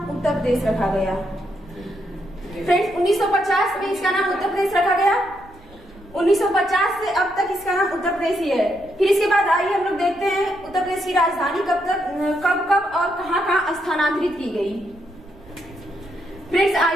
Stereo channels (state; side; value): noise; right; rumble, 25 dB below the sound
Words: उत्तर प्रदेश रखा गया। फ्रेंड्स, 1950 में इसका नाम उत्तर प्रदेश रखा गया। 1950 से अब तक इसका नाम उत्तर प्रदेश ही है। फिर इसके बाद आइए हम लोग देखते हैं उत्तर प्रदेश की राजधानी कब और कहाँ स्थानांतरित की गई। फ्रेंड्स,